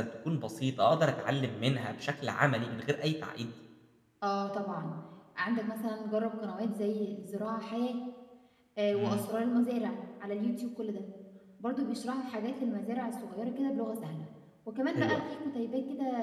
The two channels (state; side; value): identical; both; correlation 1.00